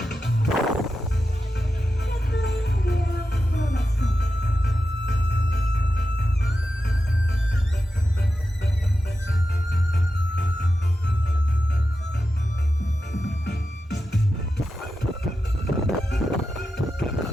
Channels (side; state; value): both; normal; correlation 0.90